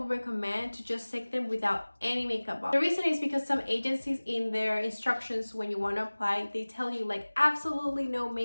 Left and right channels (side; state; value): both; inverted; correlation -1.00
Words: recommend to just take them without any makeup on. The reason is because some agencies in their instructions when you want to apply, they tell you like absolutely no